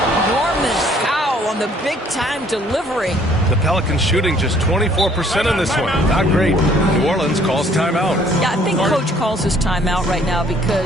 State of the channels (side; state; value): both; normal; correlation 0.61